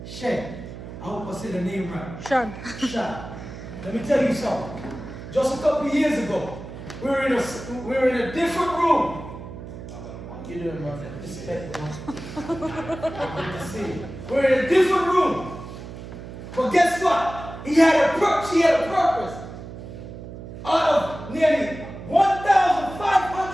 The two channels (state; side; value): noise; right; hum, 12 dB below the sound